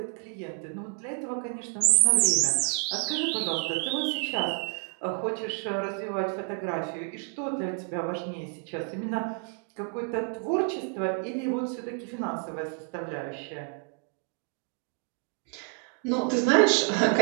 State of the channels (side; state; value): left; quieter; 36.6 dB